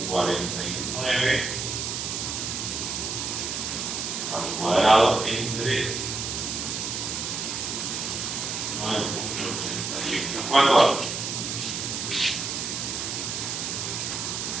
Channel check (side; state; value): right; noise; hiss, 3 dB below the sound